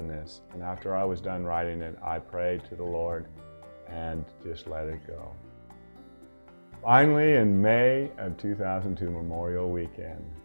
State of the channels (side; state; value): both; inverted; correlation -1.00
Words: this, and after I was done writing it, I prayed to the Lord and just let it go. Finally, in May of 2002, Memorial Weekend,